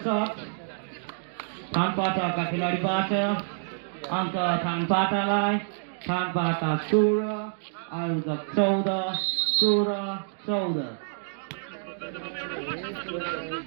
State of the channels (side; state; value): left; silent; digital silence